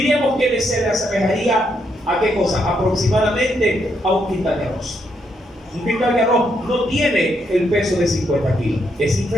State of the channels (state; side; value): normal; both; correlation 0.77